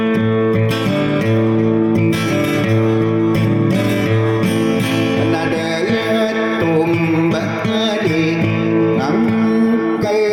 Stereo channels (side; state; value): both; identical; correlation 1.00